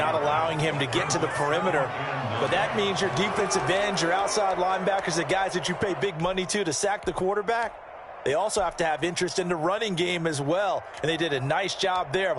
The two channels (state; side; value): identical; both; correlation 1.00